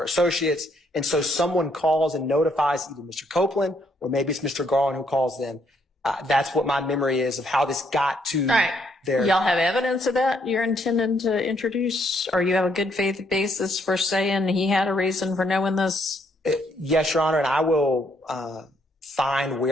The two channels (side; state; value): both; normal; correlation 0.71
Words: associates. And so someone calls and notifies either Mr. Copeland or maybe it's Mr. Garland who calls them. That's what my memory is of how this got to Y'all have evidence of that you're intending to introduce, or you have a good faith basis for saying he had a reason for knowing this? Yes, Your Honor, and I will find